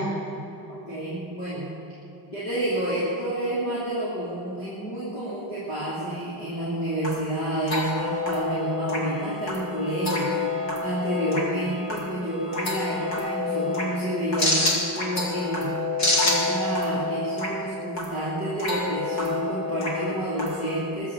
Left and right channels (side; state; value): right; late; 5.4 ms